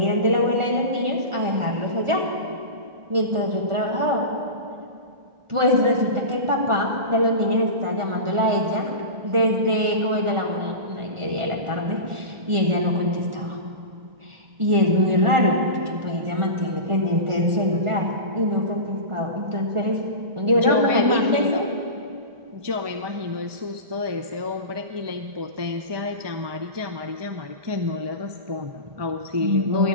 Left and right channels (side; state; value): left; late; 1.4 ms